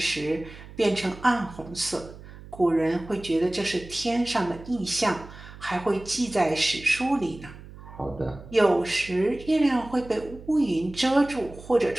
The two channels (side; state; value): right; noise; hum, 17 dB below the sound